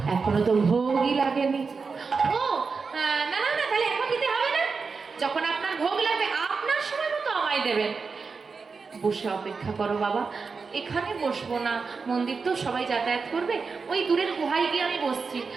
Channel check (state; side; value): quieter; left; 4.8 dB